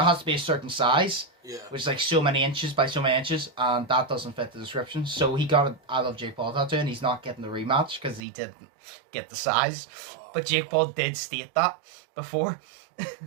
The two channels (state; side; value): drops out; left; at 8.2 s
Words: to be a certain size, which is like so many inches by so many inches, and that doesn't fit the description. So he got a I love Jake Paul tattoo, and he's not getting the rematch because he didn't get the size. But Jake Paul did state that before.